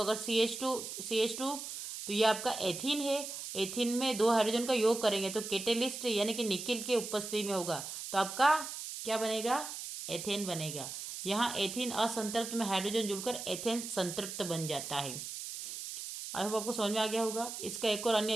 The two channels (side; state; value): right; noise; hiss, 7 dB below the sound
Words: CH2 तो ये आपका एथीन है। एथीन में 2 हाइड्रोजन का योग करेंगे तो कैटेलिस्ट यानी कि निकिल के उपस्थिति में होगा, तो आपका क्या बनेगा, एथेन बनेगा। यहाँ एथीन असंतृप्त में हाइड्रोजन जुड़कर एथेन संतृप्त बन जाता है। आई होप आपको समझ में आ गया होगा। इसका एक और अन्य